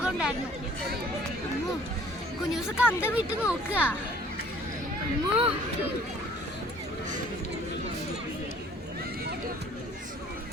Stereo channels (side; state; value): both; normal; correlation 0.54